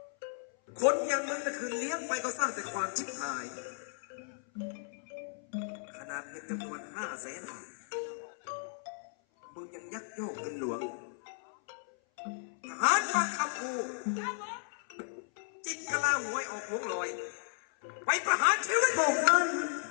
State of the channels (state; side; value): silent; right; 55 dB below the other